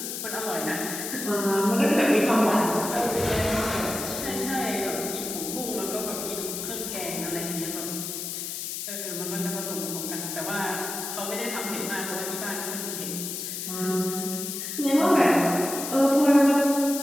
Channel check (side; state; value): left; noise; hiss, 5 dB below the sound